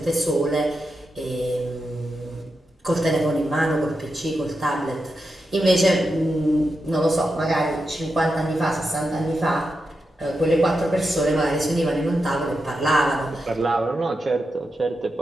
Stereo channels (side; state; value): both; normal; correlation 0.88